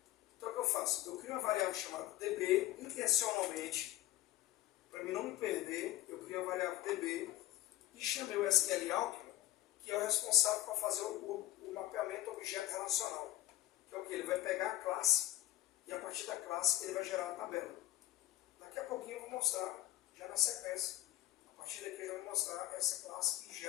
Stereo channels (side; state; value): right; quieter; 15.5 dB